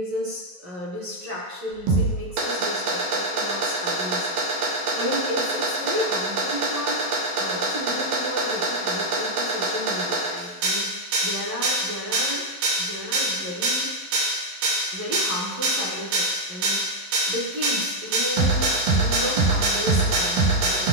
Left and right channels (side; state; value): left; late; 12 ms